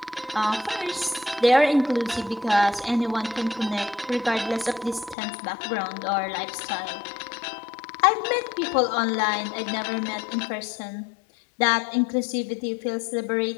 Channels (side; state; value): right; drops out; at 5.2 s